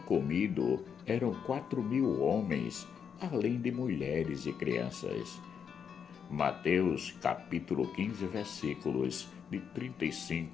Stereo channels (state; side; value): quieter; right; 7.2 dB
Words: comido eram 4.000 homens, além de mulheres e crianças. Mateus capítulo 15, versículos de